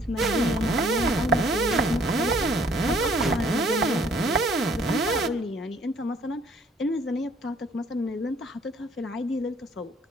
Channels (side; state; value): both; normal; correlation 0.59